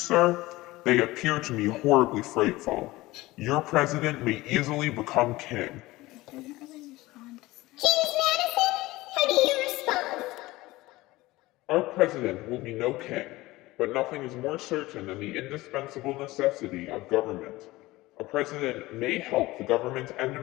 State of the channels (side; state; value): right; quieter; 19.2 dB